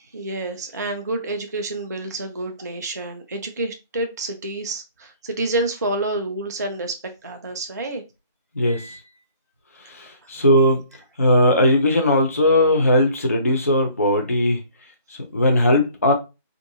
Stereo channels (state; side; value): inverted; both; correlation -0.54